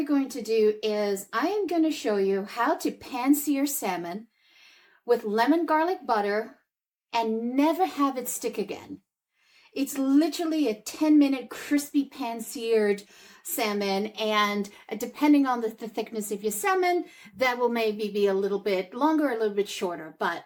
going to do is I am going to show you how to pan-sear salmon with lemon garlic butter and never have it stick again. It's literally a 10-minute crispy pan-seared salmon, and depending on the thickness of your salmon, that will maybe be a little bit longer, a little bit shorter. But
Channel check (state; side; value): identical; both; correlation 1.00